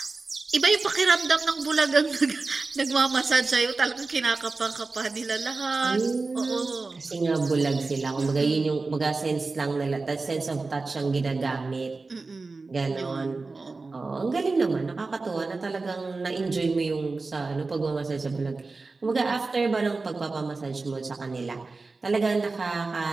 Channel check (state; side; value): quieter; left; 3.8 dB